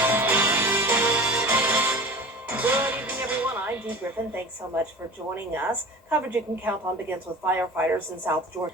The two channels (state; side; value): normal; both; correlation 0.37